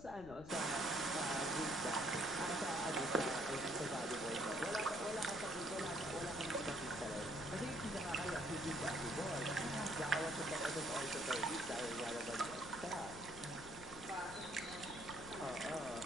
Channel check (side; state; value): left; noise; rumble, 15 dB below the sound